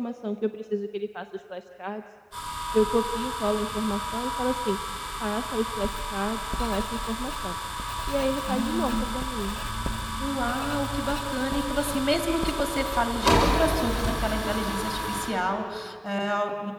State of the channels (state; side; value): identical; both; correlation 1.00